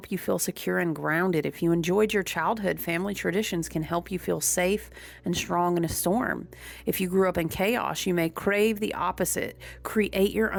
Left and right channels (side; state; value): both; identical; correlation 1.00